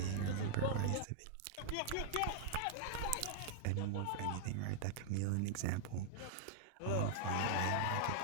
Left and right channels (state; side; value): different; both; correlation -0.01